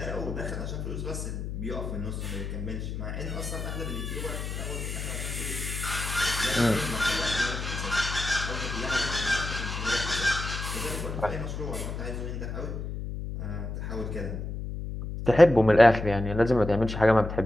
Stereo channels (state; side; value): noise; left; hum, 5 dB below the sound